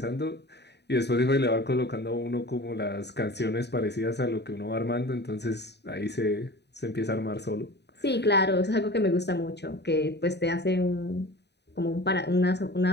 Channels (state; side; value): late; right; 0.50 ms